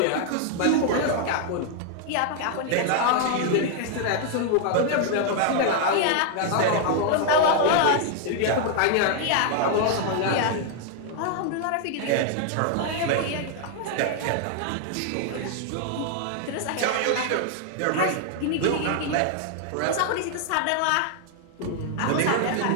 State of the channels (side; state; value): both; different; correlation 0.00